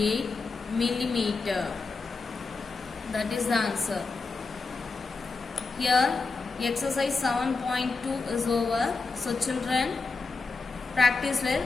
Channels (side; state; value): right; quieter; 4.1 dB